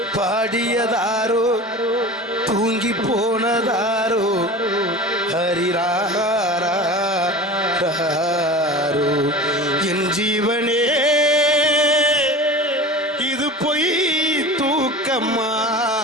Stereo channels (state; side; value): normal; both; correlation 0.35